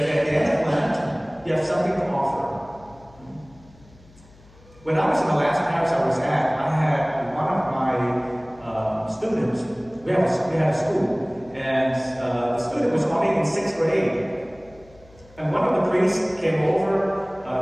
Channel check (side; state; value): left; noise; hum, 25 dB below the sound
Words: at the end of Lent, you have something to offer. When I was in the last parish I was at, I had one of my students, we had a school, and the student was only in 6th grade. And one of the priests came over